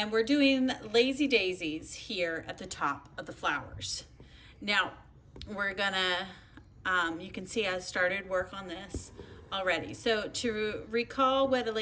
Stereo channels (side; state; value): both; identical; correlation 1.00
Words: we're doing lazy daisies here at the top of the flowers. Now, we're gonna you can see I started work on this already. So to recall what a